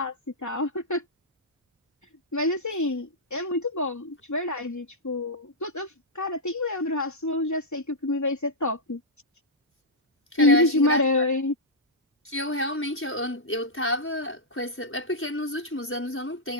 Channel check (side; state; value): both; normal; correlation -0.08